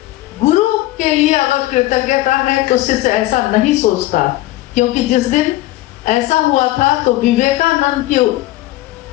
गुरु के लिए अगर कृतज्ञता है तो शिष्य ऐसा नहीं सोचता, क्योंकि जिस दिन ऐसा हुआ था तो विवेकानंद की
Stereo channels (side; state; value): right; quieter; 16.9 dB